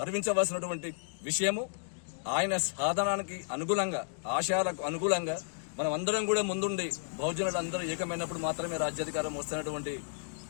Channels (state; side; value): silent; right; digital silence